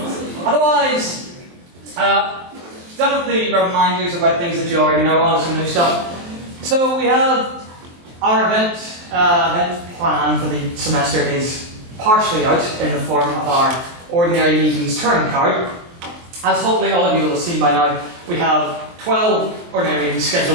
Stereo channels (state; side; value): late; left; 23 ms